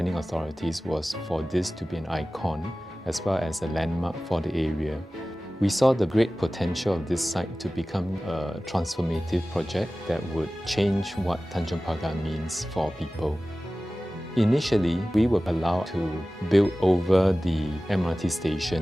authorities was for this to be an icon as well as a landmark for the area. We saw the great potential of this site to become a transformative project that would change what Tanjong Pagar means for people. Initially, we were allowed to build over the MRT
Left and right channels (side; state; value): both; normal; correlation 0.96